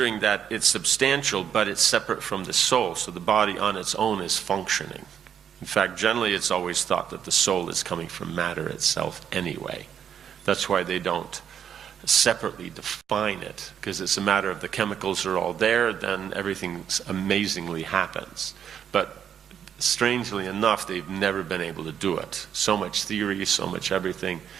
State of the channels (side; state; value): left; quieter; 8.7 dB